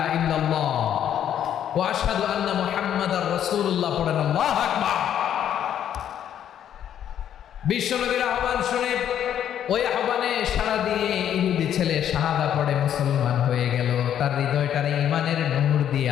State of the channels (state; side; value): quieter; right; 10.0 dB